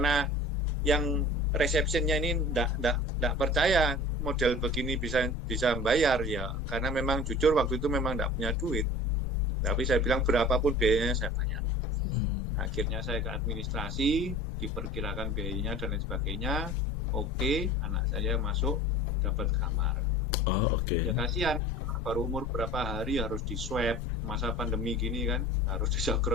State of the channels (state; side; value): normal; both; correlation 0.42